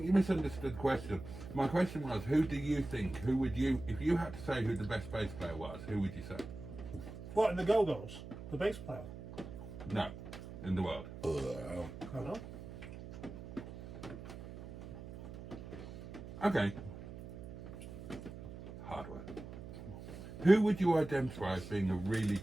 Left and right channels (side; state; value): right; noise; hum, 12 dB below the sound